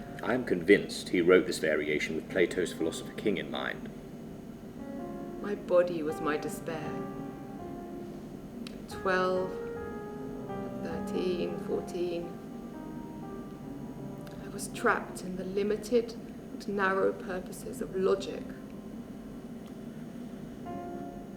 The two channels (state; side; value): identical; both; correlation 1.00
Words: I'm convinced he wrote this variation with Plato's Philosopher King in mind. My body was my despair. 12, 13, 14. I was trapped in the limited and narrow purposes of logic.